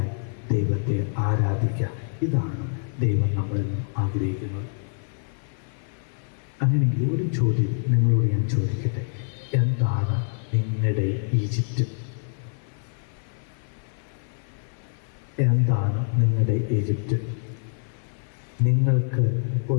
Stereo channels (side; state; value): right; silent; 55 dB below the other